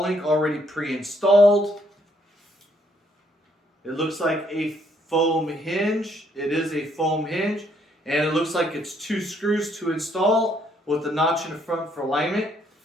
link already pre-installed. It looks like a foam hinge. It is a foam hinge, and it looks like it's 2 screws to install with the notch in the front for alignment,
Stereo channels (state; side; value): normal; both; correlation 0.70